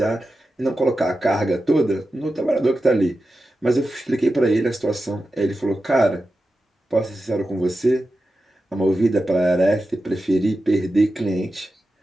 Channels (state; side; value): normal; both; correlation 0.92